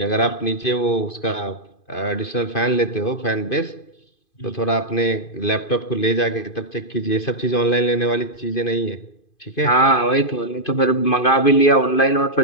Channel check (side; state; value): right; late; 2.5 ms